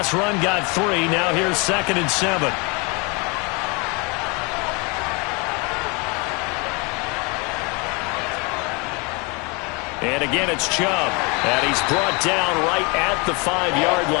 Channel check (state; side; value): quieter; right; 29.9 dB